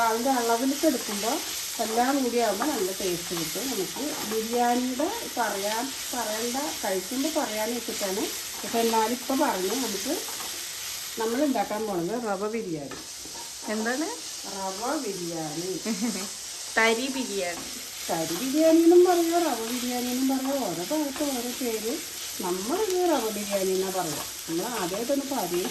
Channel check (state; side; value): identical; both; correlation 1.00